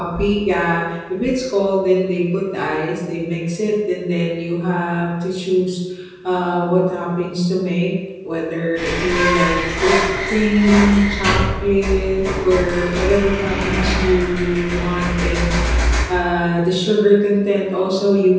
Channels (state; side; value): identical; both; correlation 1.00